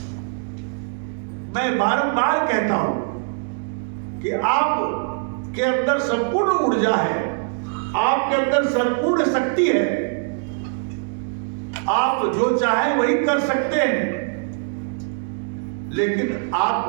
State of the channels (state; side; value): silent; left; digital silence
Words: मैं बारंबार कहता हूं कि आप के अंदर संपूर्ण ऊर्जा है, आपके अंदर संपूर्ण शक्ति है, आप जो चाहे वही कर सकते हैं, लेकिन